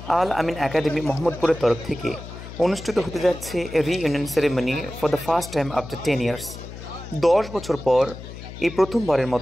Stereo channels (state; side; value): noise; left; hum, 13 dB below the sound